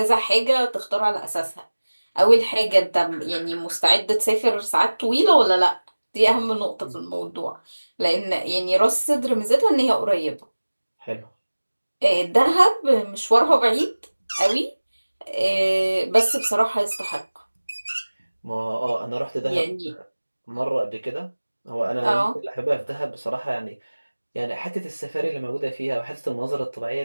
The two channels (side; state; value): both; inverted; correlation -1.00